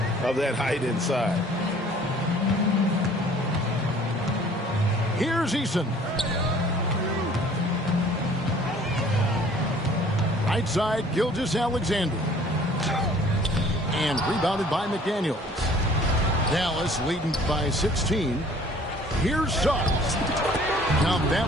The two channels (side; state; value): both; normal; correlation 0.53